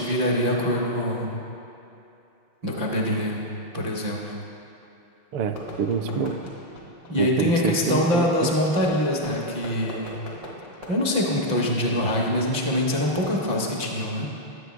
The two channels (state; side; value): late; left; 5.9 ms